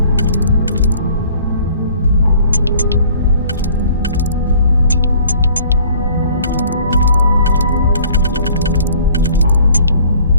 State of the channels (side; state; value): both; inverted; correlation -0.53